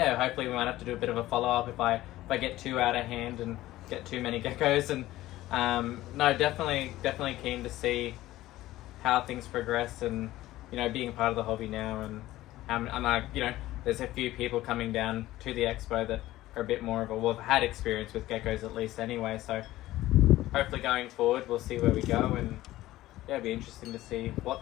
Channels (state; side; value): quieter; right; 16.0 dB